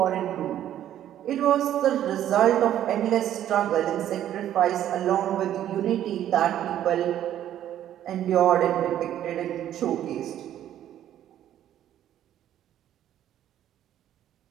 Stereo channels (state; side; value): quieter; left; 11.4 dB